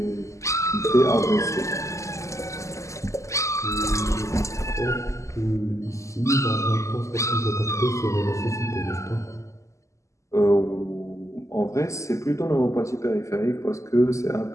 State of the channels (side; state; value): right; late; 0.15 ms